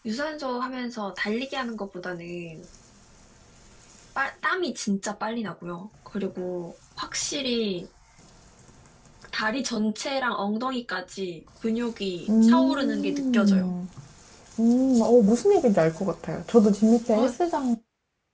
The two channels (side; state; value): both; identical; correlation 1.00